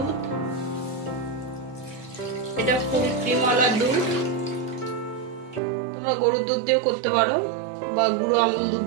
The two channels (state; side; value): drops out; left; at 5.6 s